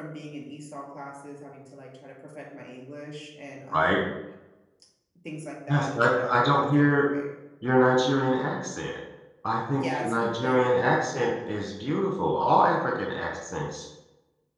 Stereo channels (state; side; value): identical; both; correlation 1.00